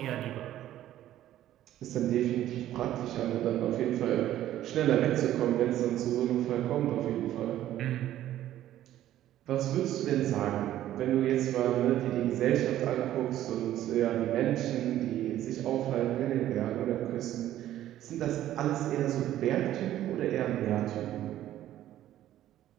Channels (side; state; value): left; quieter; 12.9 dB